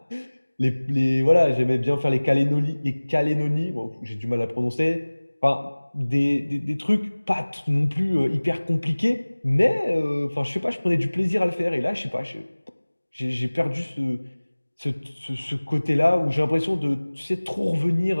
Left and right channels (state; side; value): inverted; both; correlation -1.00